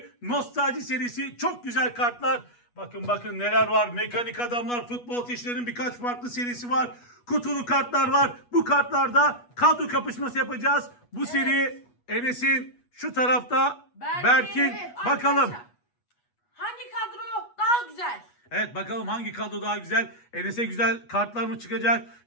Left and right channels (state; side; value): late; right; 8.3 ms